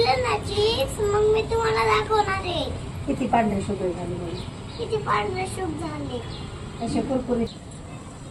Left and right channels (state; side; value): identical; both; correlation 1.00